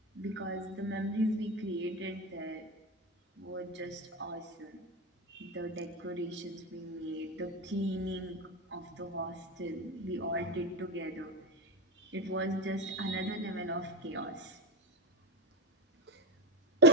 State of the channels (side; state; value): both; normal; correlation 0.12